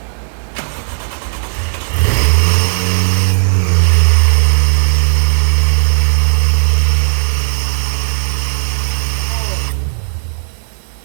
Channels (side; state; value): left; silent; digital silence